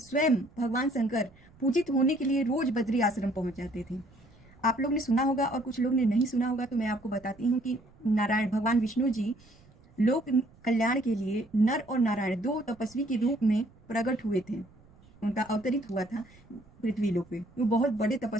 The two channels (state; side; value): noise; right; rumble, 27 dB below the sound